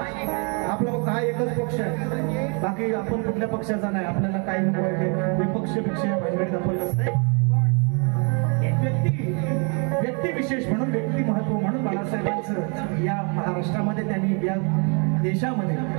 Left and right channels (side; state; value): left; quieter; 36.0 dB